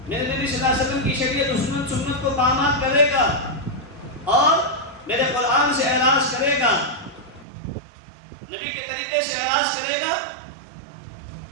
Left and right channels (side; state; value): left; drops out; at 7.5 s